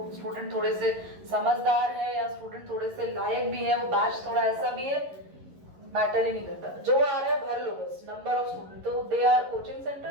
स्टूडेंट थोड़े से समझदार है या स्टूडेंट थोड़े से लायक भी है, वो बैच थोड़ा ऐसा भी है, मैटर ही नहीं करता, जो आ रहा है भर लो बस, नंबर ऑफ स्टूडेंट। तो they are coaching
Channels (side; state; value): left; late; 11 ms